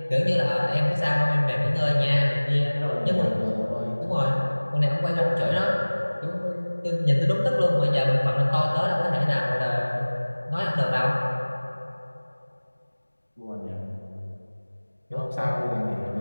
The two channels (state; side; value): inverted; both; correlation -1.00